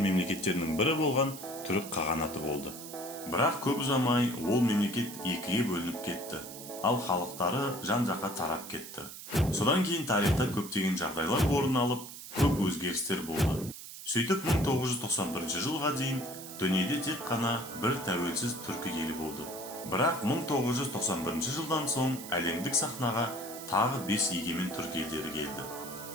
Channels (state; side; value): noise; right; hiss, 12 dB below the sound